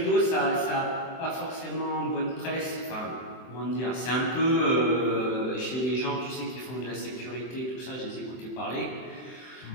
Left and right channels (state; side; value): late; right; 23 ms